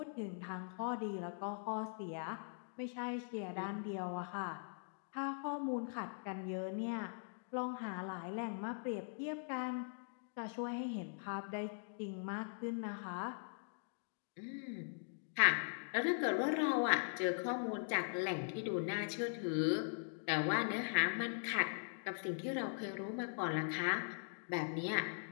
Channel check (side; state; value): right; silent; digital silence